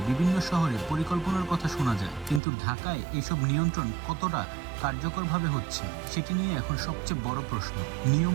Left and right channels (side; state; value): left; drops out; at 2.4 s